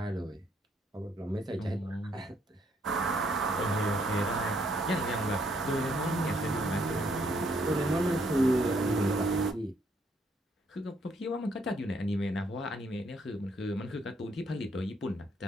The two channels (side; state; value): both; normal; correlation 0.70